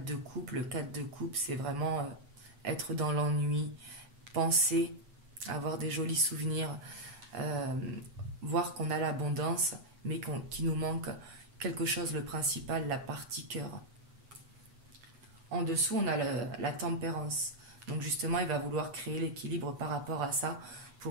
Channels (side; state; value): left; late; 8.1 ms